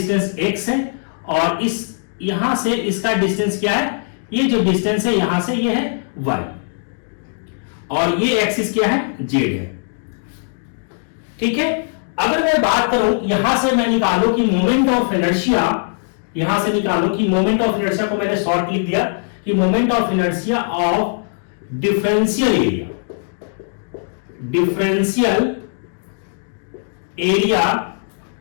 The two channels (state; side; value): silent; right; digital silence